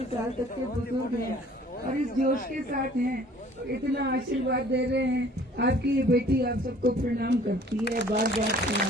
साल तक के बुजुर्ग हैं और इस जोश के साथ हैं, इतना आशीर्वाद दे रहे हैं। आपकी ये बेटी आप सबको प्रणाम करती है, बार बार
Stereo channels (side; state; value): both; normal; correlation 0.53